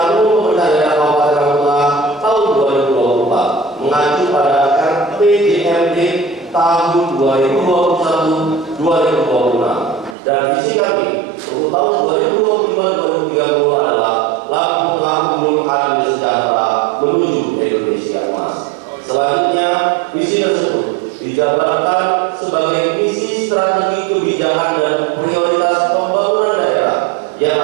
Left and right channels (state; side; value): drops out; left; at 10.2 s